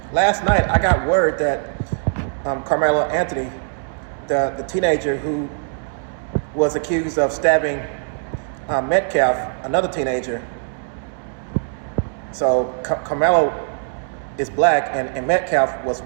last night I got word that Karmelo Anthony, the teenager who was accused of stabbing Metcalf, another teenager. So Karmelo is black and Metcalf was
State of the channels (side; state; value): left; silent; 65 dB below the other